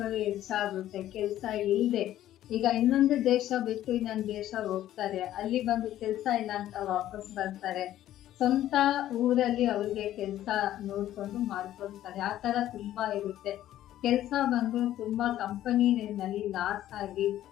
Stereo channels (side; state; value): right; quieter; 12.9 dB